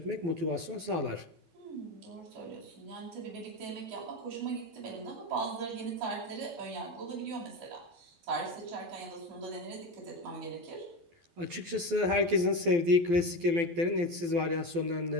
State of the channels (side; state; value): left; late; 12 ms